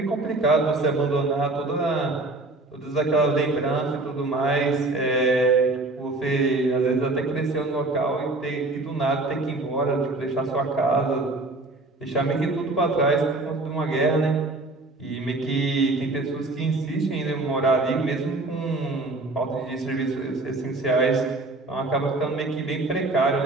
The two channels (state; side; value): quieter; left; 3.0 dB